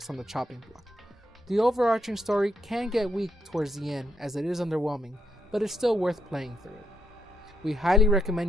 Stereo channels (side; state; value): both; normal; correlation 0.77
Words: on the chopping block. The overarching story can get weak towards the end, as it is underwhelming, but it's still worth playing through it. We highly